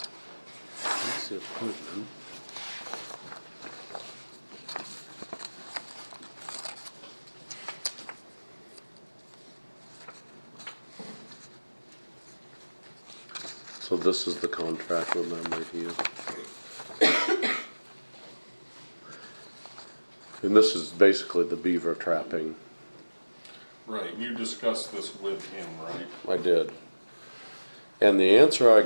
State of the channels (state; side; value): inverted; both; correlation -1.00